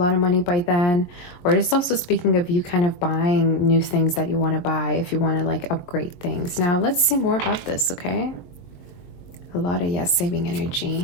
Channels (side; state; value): right; late; 22 ms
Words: of money by then. Or it's also speaking of you kind of buying new things that you want to buy if you want to like upgrade things. Now, let's see more about this, okay? A lot of, yes, saving